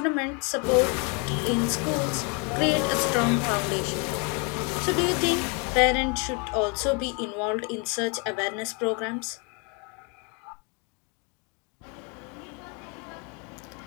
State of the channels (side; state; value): right; quieter; 34.0 dB